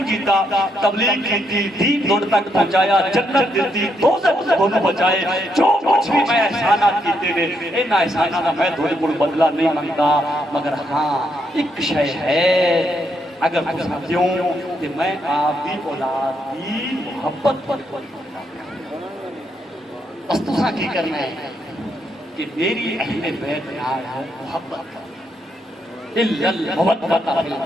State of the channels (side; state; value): both; normal; correlation 0.77